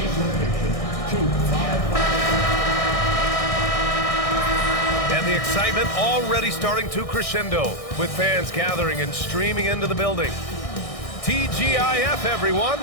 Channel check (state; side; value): late; right; 1.6 ms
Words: location to 555. And the excitement already starting to crescendo with fans gathering and streaming into the building. TGIF, everyone.